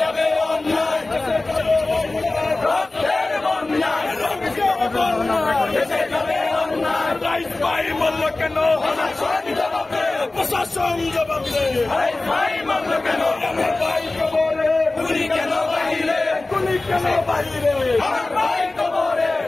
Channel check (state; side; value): quieter; right; 3.1 dB